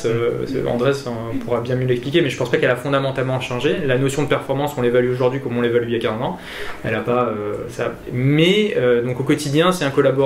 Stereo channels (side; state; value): both; identical; correlation 1.00